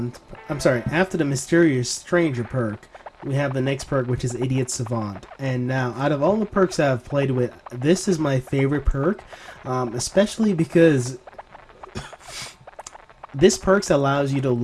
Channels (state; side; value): identical; both; correlation 1.00